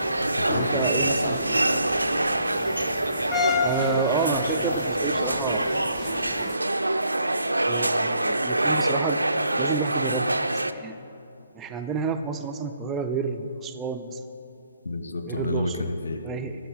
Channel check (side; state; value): both; inverted; correlation -0.68